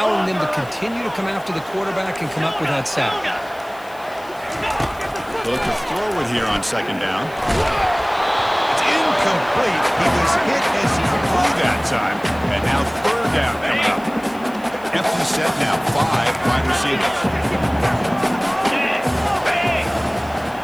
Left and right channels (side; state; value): left; noise; hiss, 24 dB below the sound